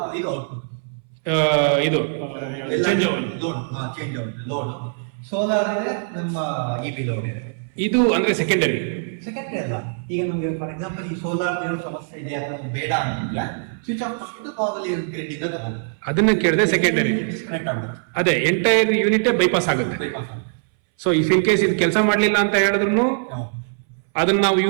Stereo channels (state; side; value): silent; left; 63 dB below the other